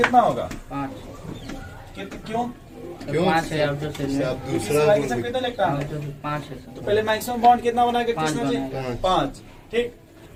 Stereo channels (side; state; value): both; identical; correlation 1.00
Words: होगा? 5 क्यों? क्यों? 5 है आउटर सेल में। आप दूसरा दूसरा कितना लगता है? आउटर सेल 5 है तो सर। पहले मैक्सिमम बॉन्ड कितना बनाएगा? 5 किसने जी? बनाएगा। 5। ठीक।